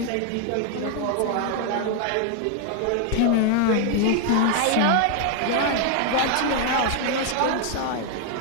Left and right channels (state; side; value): different; both; correlation 0.00